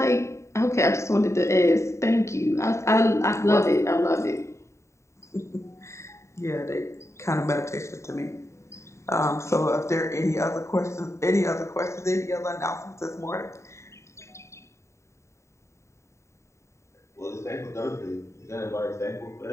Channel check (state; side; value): late; right; 0.14 ms